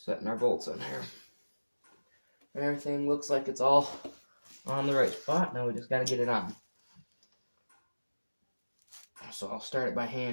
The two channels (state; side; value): inverted; both; correlation -1.00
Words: setting our bolts in here. And everything looks like it's all on the right spot. Now we just got to get it on. So I'll start it by